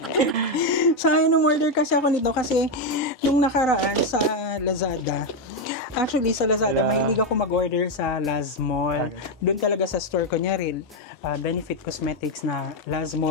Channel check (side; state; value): both; normal; correlation 0.05